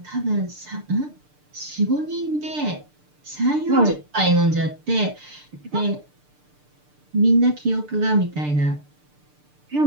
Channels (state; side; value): late; left; 6.7 ms